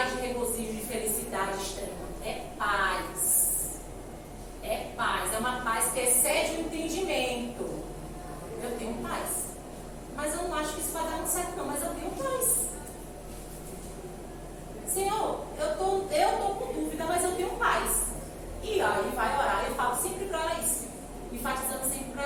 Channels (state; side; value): identical; both; correlation 1.00